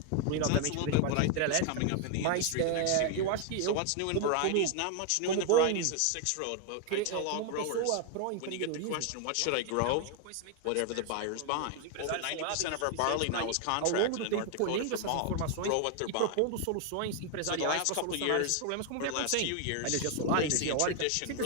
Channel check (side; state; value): both; different; correlation 0.01